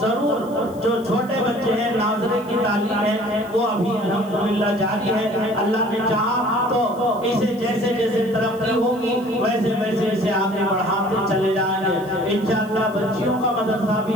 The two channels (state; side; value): noise; left; hiss, 25 dB below the sound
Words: جو چھوٹے بچے ہیں ناظرے کی تعلیم ہے وہ ابھی الحمدللہ جاری ہے. اللہ نے چاہا تو اسے جیسے جیسے ترقی ہوگی ویسے ویسے اسے آگے بڑھاتے چلے جائیں گے انشاءاللہ. بچیوں کا مدرسہ